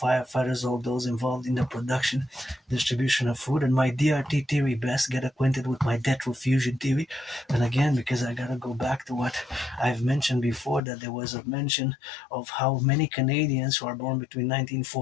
all those involved in the production, distribution of food. And my DRT theory best, get acquainted with my retrofusion theory. And again, because I gotta go back to what I've mentioned before, that there was a mention of how many Canadians who are born between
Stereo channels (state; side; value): drops out; right; at 10.8 s